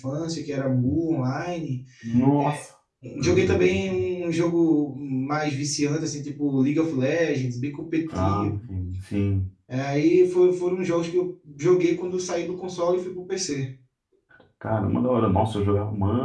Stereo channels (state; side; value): identical; both; correlation 1.00